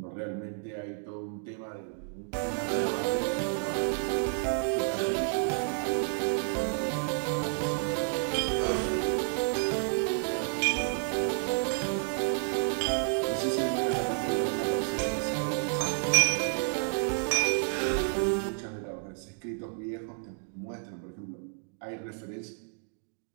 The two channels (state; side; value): silent; left; 57 dB below the other